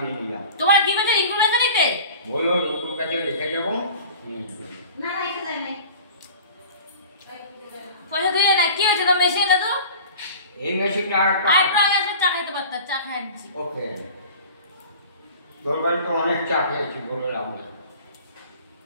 নিয়ে যাও। তোমার কি বলছে রিঙ্কুর কাছে নিতে? বললো রিঙ্কুর কাছে রেখে যাবো। না রেখে দেয় না, পয়সা দিয়ে না কি হয়েছে তো মেশিন না তো এই মেশিনটা আর একটা এসে চা খাইতে পারতাম, চা খাই আনছি। ওকে তোর বাড়িতে অনেক চা খেয়েছি বলে লাভ নেই,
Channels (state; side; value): inverted; both; correlation -0.41